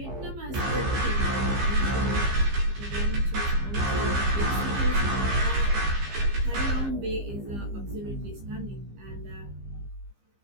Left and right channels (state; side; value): late; left; 15 ms